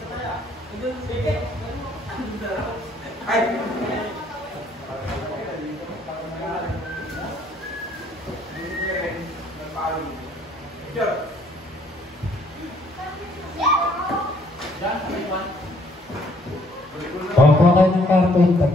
Kuha kayo ng karton,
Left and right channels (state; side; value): normal; both; correlation 0.64